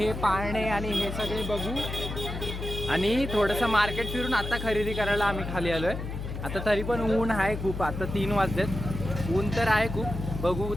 पाळणे आणि हे सगळे बघू आणि थोडंसं मार्केट फिरून आता खरेदी करायला आम्ही खाली आलो आहे. आता तरी पण ऊन आहे खूप. आता 3 वाजलेत. ऊन तर आहे खूप. बघू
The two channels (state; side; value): noise; left; hum, 6 dB below the sound